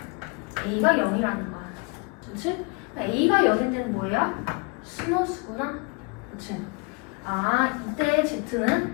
A가 0이라는 거야. 그치? A가 0일 때는 뭐예요? 순허수구나. 그치? 아, 이때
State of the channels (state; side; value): quieter; right; 31.0 dB